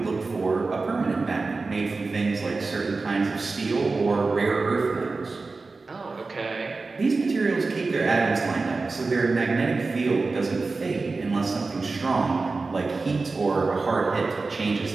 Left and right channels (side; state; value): left; quieter; 3.9 dB